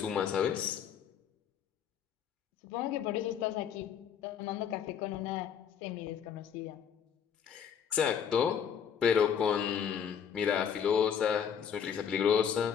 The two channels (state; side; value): quieter; right; 7.9 dB